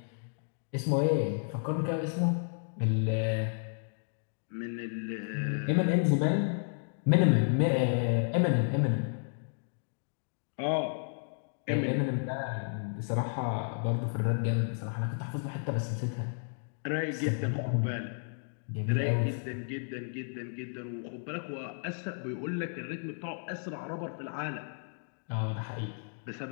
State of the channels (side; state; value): right; silent; digital silence